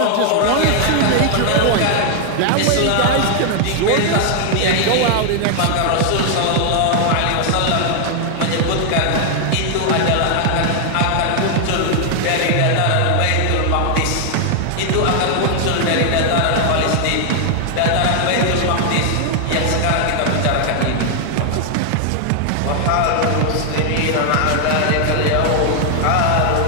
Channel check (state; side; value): different; both; correlation 0.00